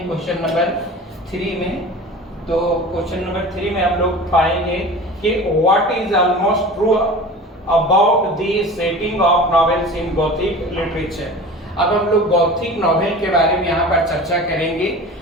क्वेश्चन नंबर 3 में। तो क्वेश्चन नंबर 3 में हम लोग पाएंगे कि what is almost true about the setting of novels in Gothic literature. अब हम लोग गॉथिक नॉवेल के बारे में यहाँ पर चर्चा करेंगे,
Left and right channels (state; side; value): normal; both; correlation 0.36